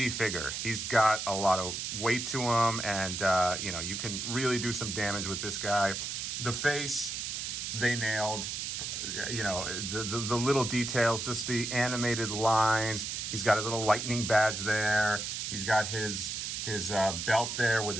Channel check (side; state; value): right; noise; hiss, 4 dB below the sound